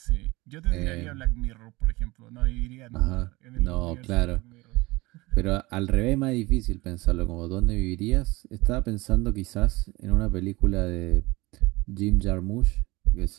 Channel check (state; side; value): quieter; left; 21.9 dB